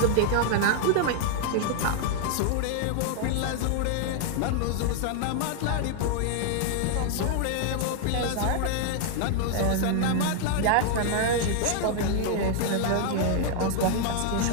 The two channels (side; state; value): both; different; correlation 0.00